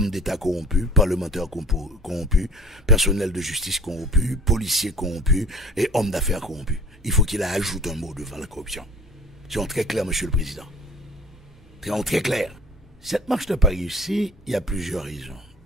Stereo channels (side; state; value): both; normal; correlation 0.44